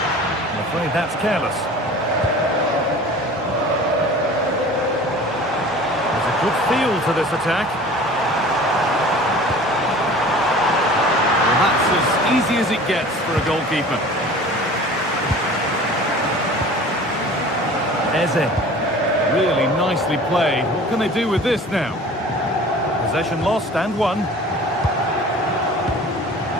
I'm afraid that's careless. There's a good feel to this attack. Well, that's as easy as it gets for a goalkeeper. Eze. Really nicely played. What can they do with this now? Possession lost and won.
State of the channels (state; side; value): normal; both; correlation 0.43